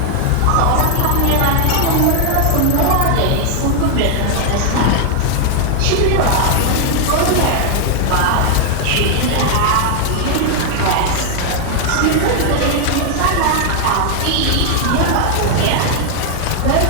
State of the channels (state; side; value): different; both; correlation 0.00